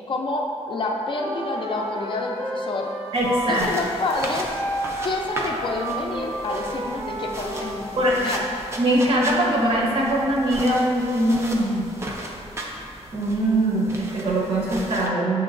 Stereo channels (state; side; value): normal; both; correlation 0.57